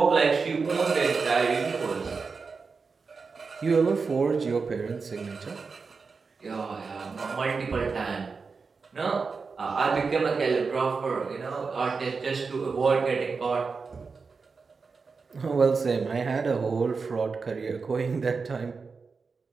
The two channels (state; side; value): quieter; left; 4.8 dB